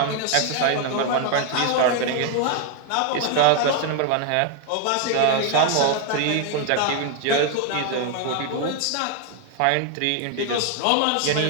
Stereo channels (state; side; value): different; both; correlation 0.01